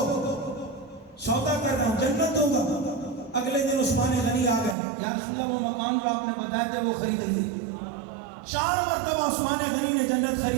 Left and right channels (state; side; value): drops out; left; at 4.8 s